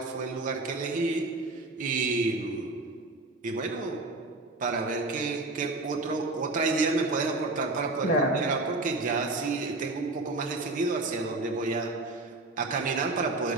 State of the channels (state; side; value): quieter; left; 3.0 dB